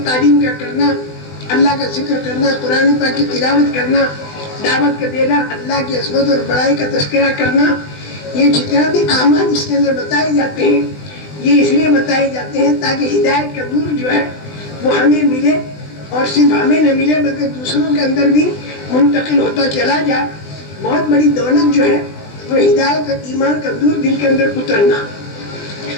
تعلیم کا کرنا، اللہ کا ذکر کرنا، قرآن پاک کی تلاوت کرنا، دعوت کا دینا، اللہ کی عظمت اور بڑائی کا تذکرہ کرنا، یہ جتنا بھی اعمال اس کے اندر بتائے جاتے ہیں، یہ اس لیے بتائے جاتے ہیں تاکہ ہدایت کا نور جو ہے وہ ہمیں ملے، اور صرف ہمیں نہ ملے بلکہ دوسروں کے اندر بھی منتقل ہوتا چلا جائے۔ بہت بڑی دولت جو ہے وہ ہدایت اور ایمان کا نور دل کے اندر اترنا۔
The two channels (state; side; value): late; right; 20 ms